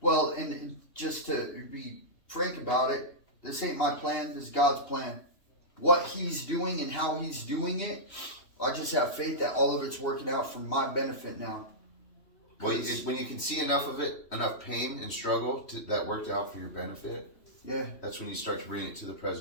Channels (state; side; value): late; right; 3.1 ms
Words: and just to be frank about it, this ain't my plan, this is God's plan. What he's doing and how he's doing it, I just have faith that all of it's working out for my benefit now. Well, when you can see enough of it, enough pain and struggle that worked out for your benefit, Yeah. that's when you start to bring it to the